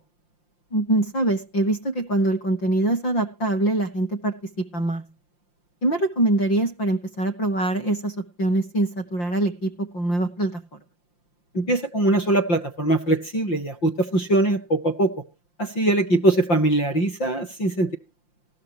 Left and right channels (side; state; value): right; late; 5.7 ms